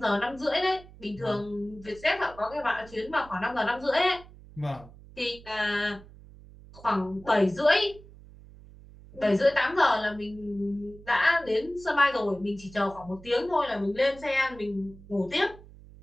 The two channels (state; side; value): noise; right; hum, 20 dB below the sound